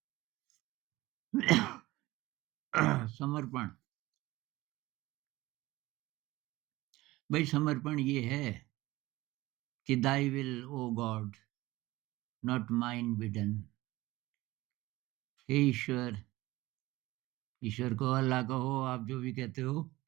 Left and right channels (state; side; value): quieter; left; 18.7 dB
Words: समर्पण। भाई समर्पण ये है कि thy will O God not mine be done. हे ईश्वर, ईश्वर को अल्लाह कहो, आप जो भी कहते हो,